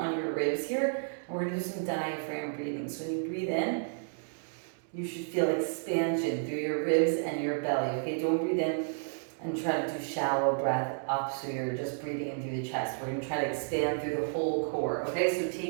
your ribs here. And we're going to do some diaphragm breathing. So when you breathe in, you should feel expansion through your ribs and your belly. Okay, don't breathe in and try to do shallow breath up, so you're just breathing in through the chest. We're going to try to expand through the whole core. Okay, so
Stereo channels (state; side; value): silent; left; digital silence